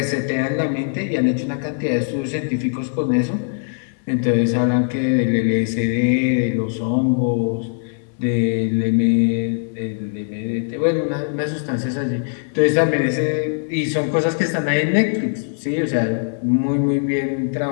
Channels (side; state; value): right; silent; digital silence